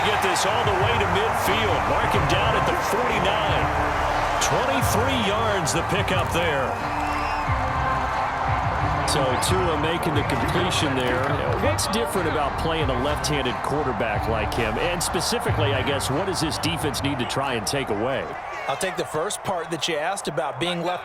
get this all the way to midfield. Mark him down at the 49. 23 yards the pickup there. So Tua making the completion there. What's different about playing a left-handed quarterback like him? And specifically, I guess, what does this defense need to try and take away? I'll take the first part that you asked about being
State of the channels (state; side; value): identical; both; correlation 1.00